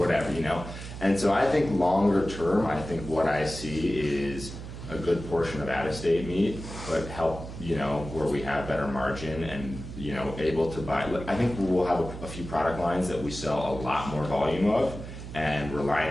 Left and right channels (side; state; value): right; noise; hum, 10 dB below the sound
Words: you know? And so I think longer term, I think what I see is a good portion of out-of-state meat, but help, you know, where we have better margin and, you know, able to buy. I think we'll have a few product lines that we sell a lot more volume of, and